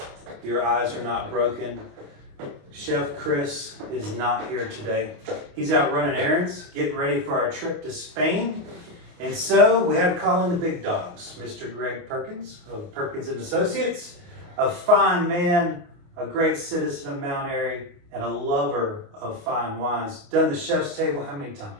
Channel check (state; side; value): late; left; 28 ms